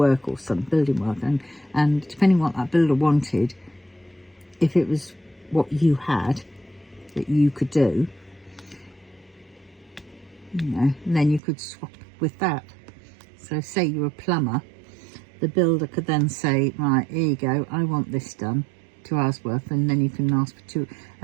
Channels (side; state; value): left; drops out; at 11.4 s